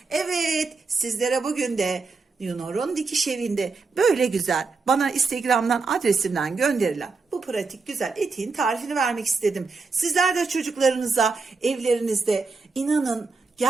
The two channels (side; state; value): left; quieter; 4.3 dB